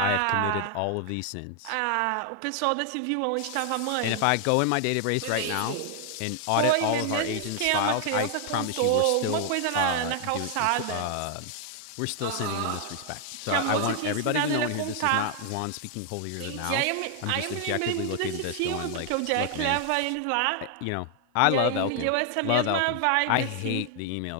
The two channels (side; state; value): both; different; correlation 0.00